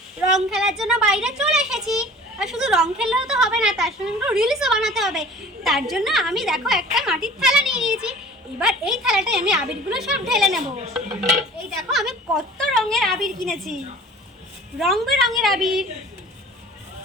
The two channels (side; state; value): both; normal; correlation 0.45